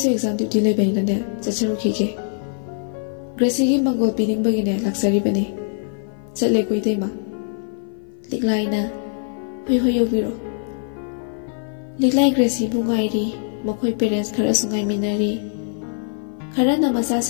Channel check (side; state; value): right; silent; 56 dB below the other